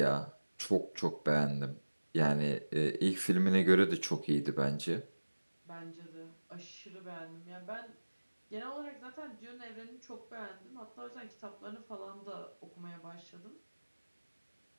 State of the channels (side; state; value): both; inverted; correlation -1.00